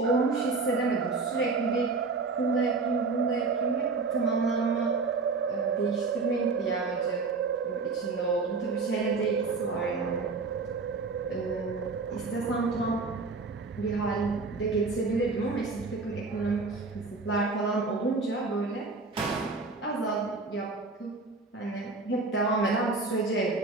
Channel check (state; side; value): quieter; left; 4.1 dB